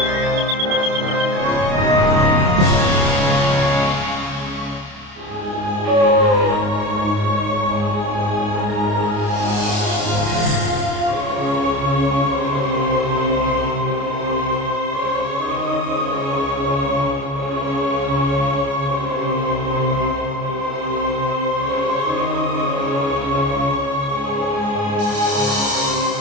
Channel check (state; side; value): late; left; 29 ms